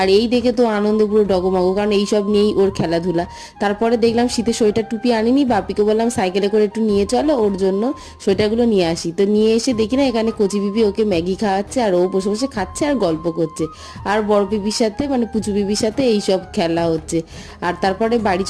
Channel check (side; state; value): both; identical; correlation 1.00